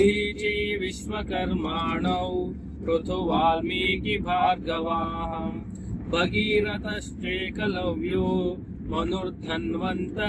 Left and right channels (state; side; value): identical; both; correlation 1.00